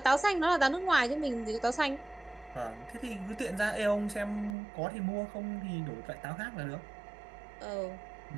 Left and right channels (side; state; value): left; drops out; at 4.5 s